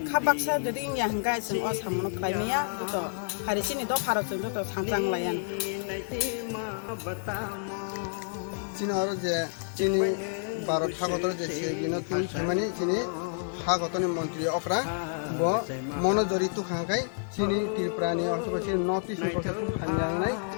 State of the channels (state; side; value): silent; right; 58 dB below the other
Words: खा बाक्सा যদি इन्या हंगाय जों अ सामुनो खायमिया जत हारिसिनि द फाराव जों जत थांजां लायान चीनहरु जे चीनी भारत हागतर जे सेगिनो तुम सेमानि चीनी हागतनि मन्त्री अफ्रा ब मनोजरी तुखांखाय चीनी त्रिपुरानि अथवा चीन नॉर्थ ईस्ट प्रशासन हामयांगनाय